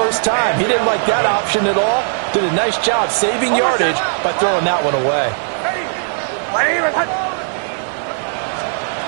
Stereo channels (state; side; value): silent; left; 68 dB below the other